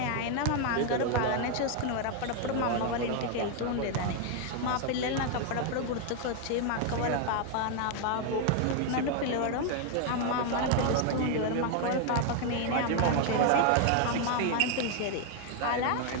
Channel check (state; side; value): different; both; correlation 0.01